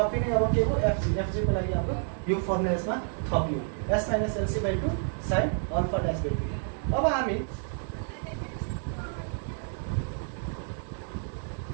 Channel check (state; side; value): silent; left; 57 dB below the other